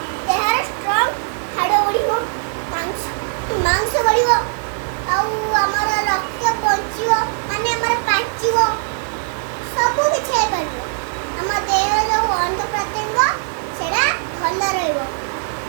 ଦେହର ଷ୍ଟ୍ରଙ୍ଗ ହାଡ଼ ବଢ଼ିବ, ମାଂସ ବଢ଼ିବ, ଆଉ ଆମର ରକ୍ତ ବଞ୍ଚିବ, ମାନେ ଆମର ପାଚିବ, ସବୁ କିଛି ହେଇପାରିବ। ଆମ ଦେହର ଯେଉଁ ଅଙ୍ଗ ପ୍ରତ୍ୟଙ୍ଗ ସେଟା ଭଲ ରହିବ।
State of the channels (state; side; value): silent; left; digital silence